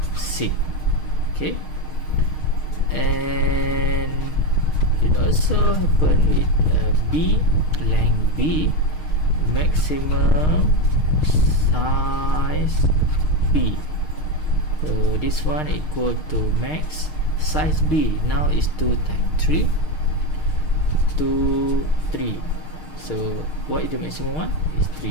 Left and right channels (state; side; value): late; right; 6.5 ms